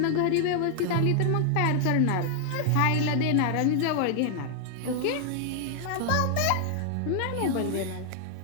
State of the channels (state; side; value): different; both; correlation 0.00